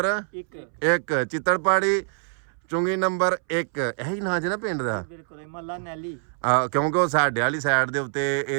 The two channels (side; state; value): left; silent; 62 dB below the other